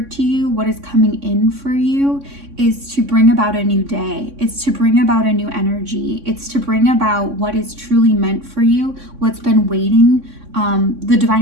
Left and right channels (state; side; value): late; left; 3.6 ms